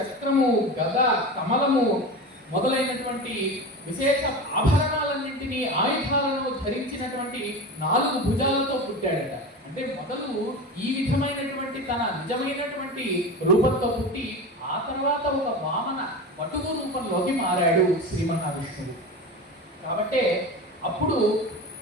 గద, కమలము మొదలైనటువంటి విశేష ఆభరణాలన్నింటినీ, ఆయుధాలను ధరించినటువంటి 4 భుజాలతో పుట్టాడట. అంటే మొదలు ఈ విధమైనటువంటి తన నిజమైనటువంటి రూపంతో పుట్టి ఆ తర్వాత ఒక వామన వటువు రూపంలోకి మారాడు శ్రీ మహావిష్ణువు. కాబట్టే అప్పుడు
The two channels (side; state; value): both; normal; correlation 0.28